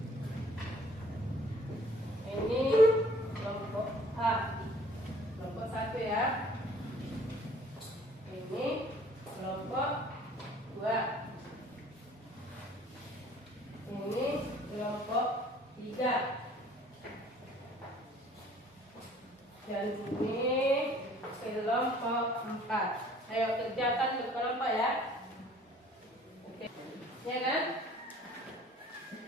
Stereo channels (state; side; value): normal; both; correlation 0.54